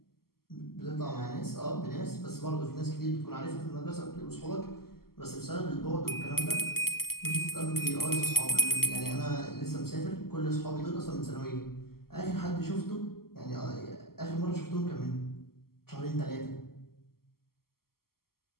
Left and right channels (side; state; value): right; late; 0.93 ms